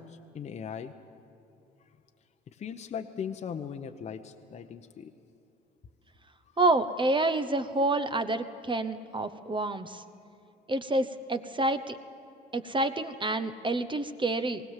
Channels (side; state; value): both; normal; correlation 0.40